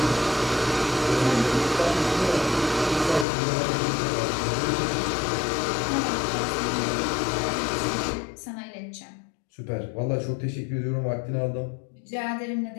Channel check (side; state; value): right; drops out; at 3.2 s